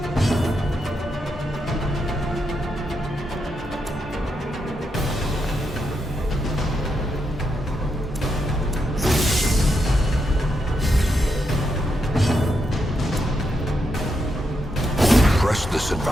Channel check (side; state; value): both; normal; correlation 0.82